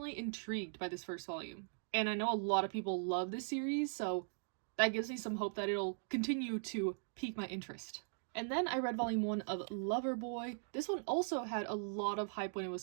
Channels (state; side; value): silent; left; digital silence